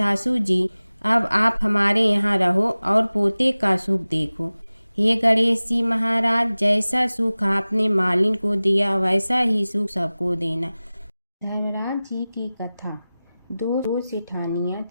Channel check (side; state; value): both; inverted; correlation -0.97